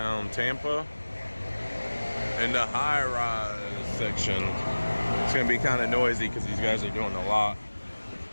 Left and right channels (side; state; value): both; inverted; correlation -1.00